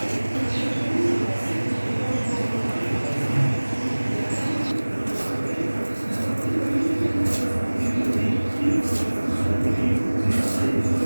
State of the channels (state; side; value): inverted; both; correlation -1.00